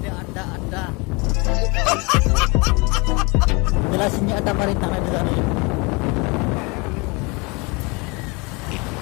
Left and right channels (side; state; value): right; quieter; 28.1 dB